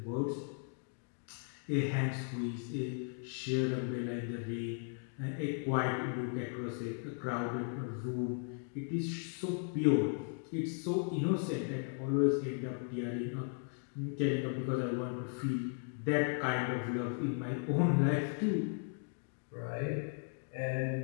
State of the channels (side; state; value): right; silent; 53 dB below the other